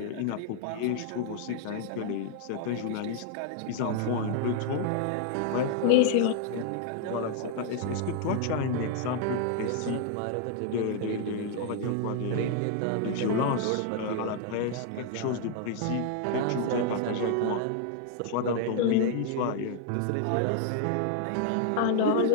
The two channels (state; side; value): different; both; correlation 0.00